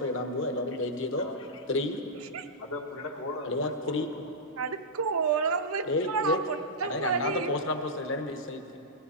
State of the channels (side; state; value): both; normal; correlation -0.11